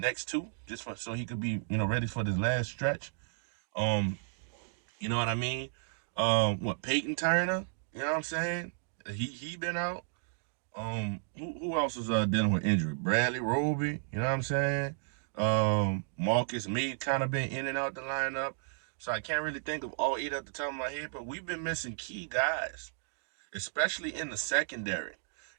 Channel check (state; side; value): silent; left; digital silence